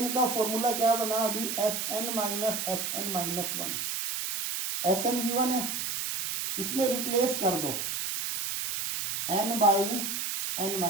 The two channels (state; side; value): noise; right; hiss, 2 dB below the sound